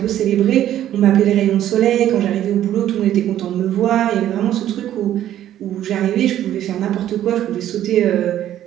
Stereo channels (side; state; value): left; quieter; 11.9 dB